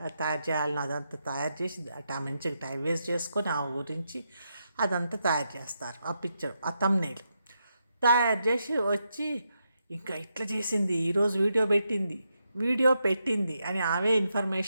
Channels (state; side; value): inverted; both; correlation -0.83